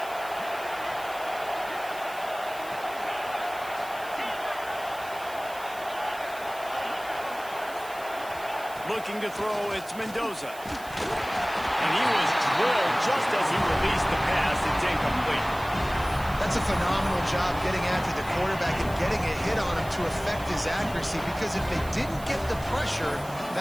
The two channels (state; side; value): noise; right; hiss, 18 dB below the sound